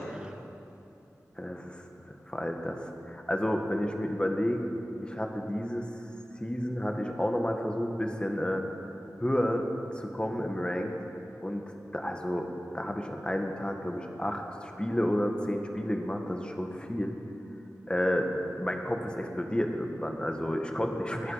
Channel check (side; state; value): both; normal; correlation 0.96